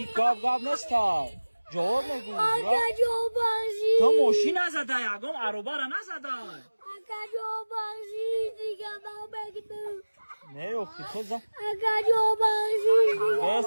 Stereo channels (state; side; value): inverted; both; correlation -1.00